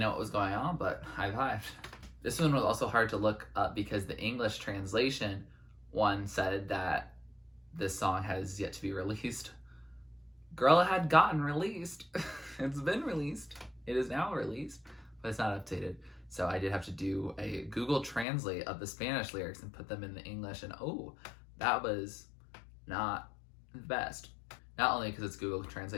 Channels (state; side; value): drops out; right; at 18.2 s